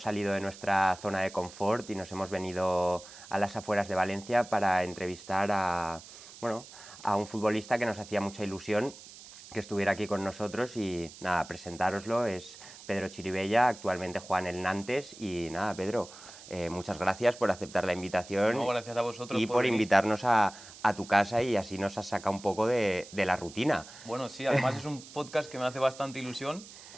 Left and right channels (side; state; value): right; noise; hiss, 17 dB below the sound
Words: salido de nuestra zona de confort y nos hemos venido a las afueras de Valencia para entrevistar a un futbolista que nos hacía mucha ilusión que estuviera aquí con nosotros y nada, presentároslo, es Pedro Chirivella, actualmente juega en el Nantes y nada, Pedro, muchas gracias por aceptar la invitación. No, gracias a vosotros y por venir. Invitarnos a tu casa y así nos has sacado un poco de la rutina. Bueno, sí, además es un podcast que me hace bastante ilusión